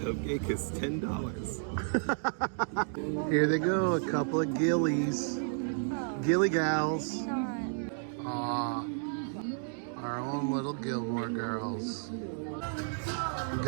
is $10. Here they go, a couple of gillies. Gilly gals. Aw. Our own little Gilmore Girls.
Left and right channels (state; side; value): silent; left; digital silence